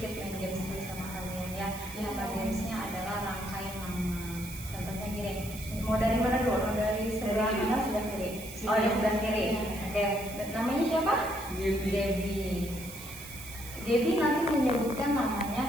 main games bersama kalian ya. Gamesnya adalah rangkai nama. Contohnya gini, mau dari mana dulu? Mau dari sebelah kanan, sebelah kiri? Oh, dari sebelah kiri. Oke, namanya siapa? Debbie nanti menyebutkan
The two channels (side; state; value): right; noise; hiss, 13 dB below the sound